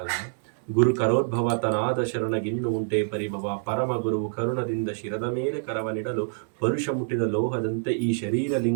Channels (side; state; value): left; silent; 61 dB below the other